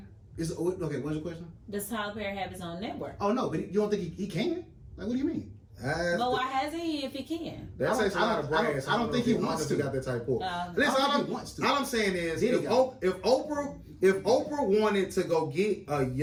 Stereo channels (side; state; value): both; identical; correlation 1.00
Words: Okay, what's your question? Does Tyler Perry have his own network? Oh no, but you don't think he can? Like, what do you mean? But why hasn't he if he can? That takes a lot of brains. I don't think he wants to. Got that type of. Listen, all I'm saying is, if Oprah wanted to go get a